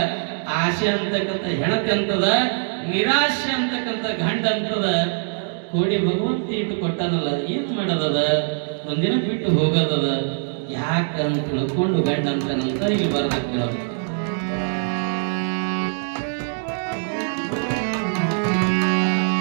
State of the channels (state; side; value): silent; left; digital silence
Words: ಆಶೆ ಅಂತಕ್ಕಂಥ ಹೆಣತಿ ಅಂತದ, ನಿರಾಶೆ ಅಂತಕ್ಕಂಥ ಗಂಡ ಅಂತದ. ಕೋಡಿ ಭಗವಂತ ಇಟ್ಟು ಕೊಟ್ಟಾನಲ್ಲ, ಏನ್ ಮಾಡೋದದ, ಒಂದಿನ ಬಿಟ್ಟು ಹೋಗೋದದ, ಯಾಕಂತ ತಿಳ್ಕೊಂಡು ಗಂಡ ಅಂತನಂತ ಇಲ್ಲಿ ಬರದ ಕೇಳೋದು.